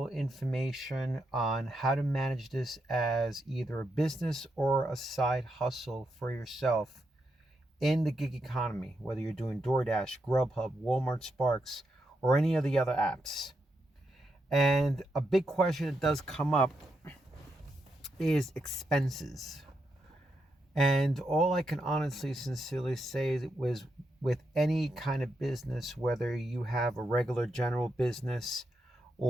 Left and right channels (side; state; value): both; normal; correlation 0.83